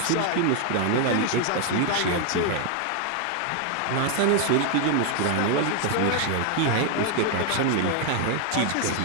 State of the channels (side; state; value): both; different; correlation 0.00